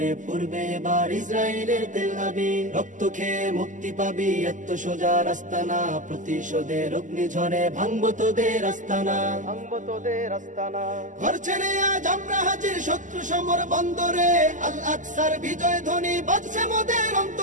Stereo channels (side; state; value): left; late; 0.37 ms